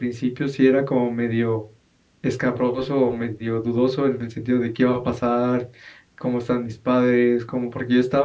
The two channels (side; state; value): both; identical; correlation 1.00